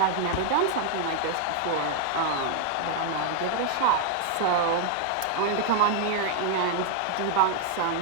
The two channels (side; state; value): both; different; correlation 0.00